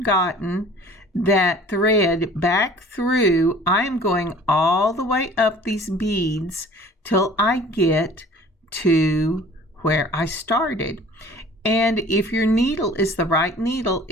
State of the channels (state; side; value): normal; both; correlation 0.49